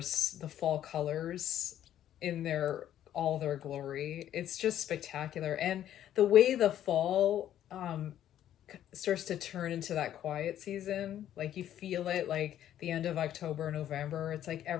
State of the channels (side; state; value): right; quieter; 11.4 dB